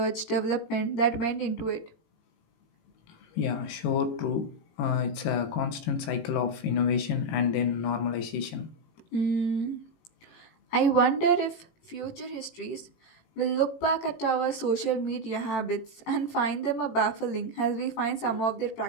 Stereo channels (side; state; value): right; late; 18 ms